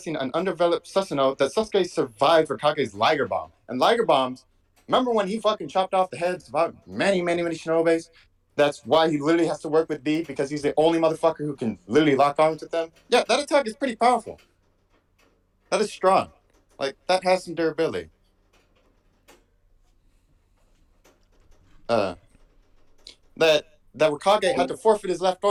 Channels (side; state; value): both; identical; correlation 1.00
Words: an undeveloped Susanoo that Sasuke survived Raikage's Liger Bomb. And Liger Bombs, remember when he fucking chopped off the heads of many shinobis? That's why he literally has to work with B, because he's the only motherfucker who can literally lock arms with them. Yeah, that attack is pretty powerful. That is strong. Like, that has some durability. That Kage had to forfeit his left